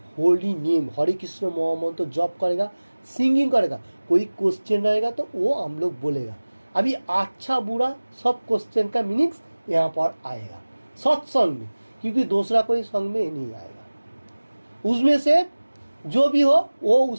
होली नेम हरे कृष्ण महामंत्र जप करेगा, सिंगिंग करेगा। कोई क्वेश्चन रहेगा तो वो हम लोग बोलेगा। अभी अच्छा बुरा सब क्वेश्चन का मीनिंग्स यहाँ पर आएगा सत्संग में, क्योंकि दूसरा कोई संग में नहीं आएगा। उसमें से जो भी हो वो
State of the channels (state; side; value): inverted; both; correlation -1.00